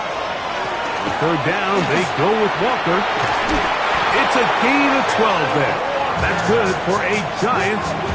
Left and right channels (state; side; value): identical; both; correlation 1.00